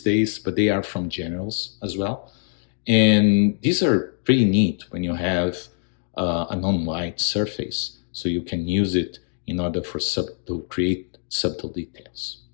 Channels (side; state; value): right; silent; digital silence